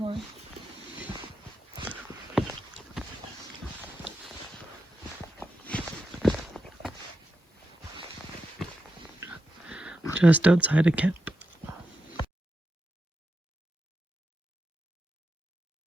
Just outside of camp.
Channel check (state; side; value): normal; both; correlation 0.87